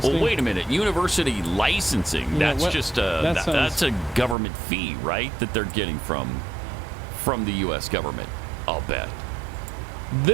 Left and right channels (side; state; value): left; drops out; at 4.4 s